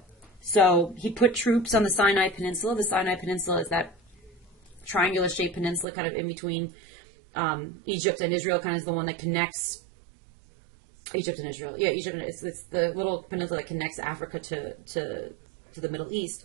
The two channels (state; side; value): drops out; left; at 5.9 s